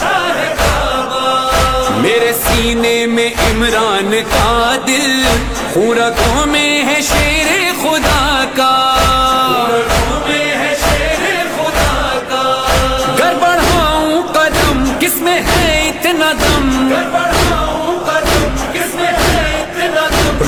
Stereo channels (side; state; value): both; identical; correlation 1.00